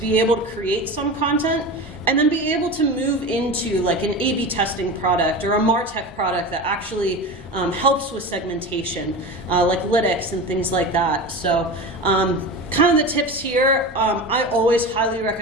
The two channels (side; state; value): both; normal; correlation 0.28